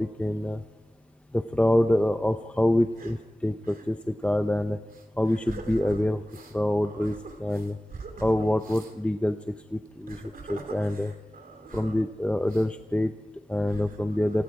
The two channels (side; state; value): both; normal; correlation 0.97